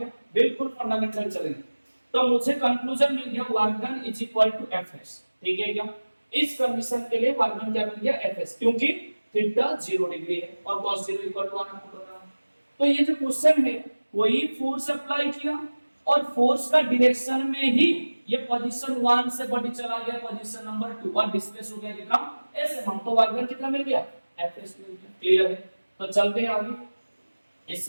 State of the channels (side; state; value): both; inverted; correlation -1.00